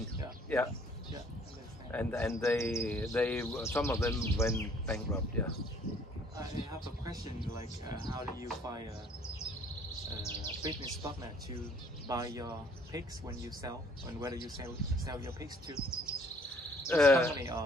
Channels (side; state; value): both; normal; correlation 0.59